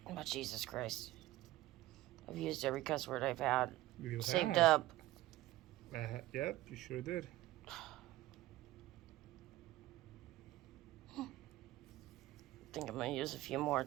Oh, Jesus Christ. I've used every cuss word I've had. You Saved have. up. Yep, you sure did. I think I'm going to use a few more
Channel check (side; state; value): left; quieter; 16.6 dB